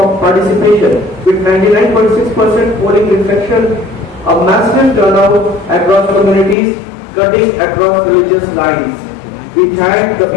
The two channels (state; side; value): drops out; right; at 6.6 s